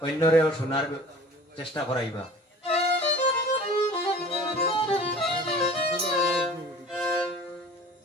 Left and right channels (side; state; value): both; normal; correlation 0.44